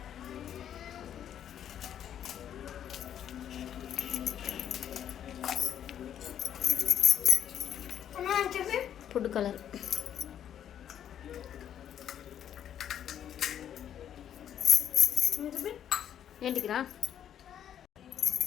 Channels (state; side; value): quieter; right; 9.8 dB